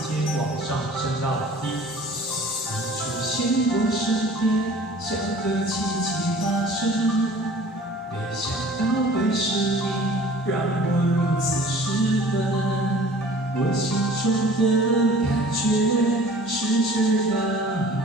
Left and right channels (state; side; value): normal; both; correlation 0.47